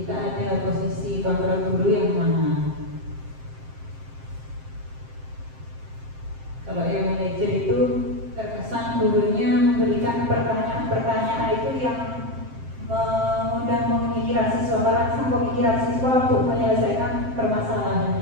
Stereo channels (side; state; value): left; late; 7.6 ms